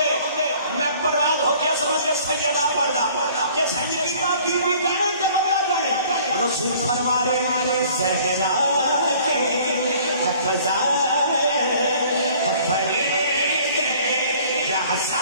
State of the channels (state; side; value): inverted; both; correlation -0.53